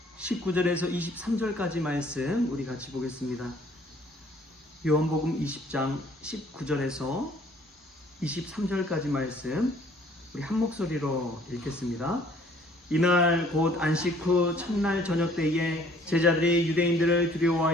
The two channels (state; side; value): normal; both; correlation 0.57